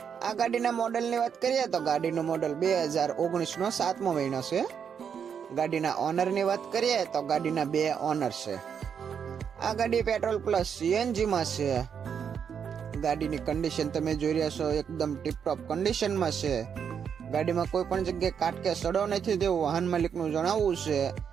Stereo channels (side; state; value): left; quieter; 7.4 dB